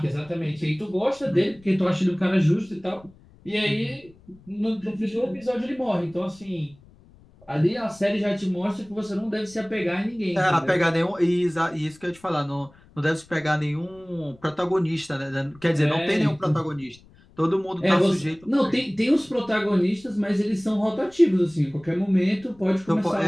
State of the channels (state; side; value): noise; left; rumble, 27 dB below the sound